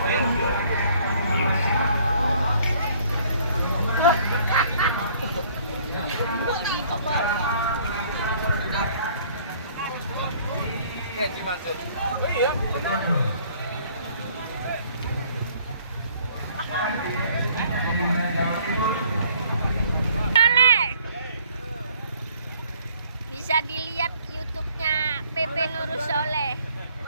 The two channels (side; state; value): both; inverted; correlation -0.59